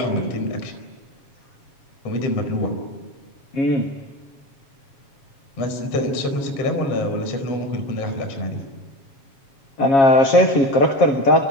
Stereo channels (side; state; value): right; late; 7.3 ms